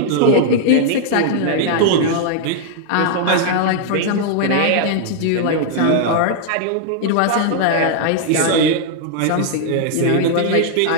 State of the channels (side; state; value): both; different; correlation -0.01